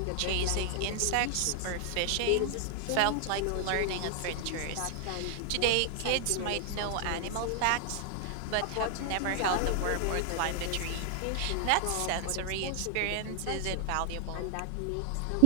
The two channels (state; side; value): different; both; correlation 0.00